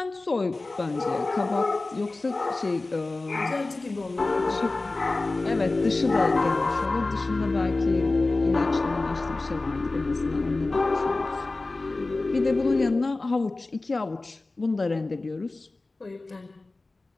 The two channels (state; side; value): quieter; right; 3.2 dB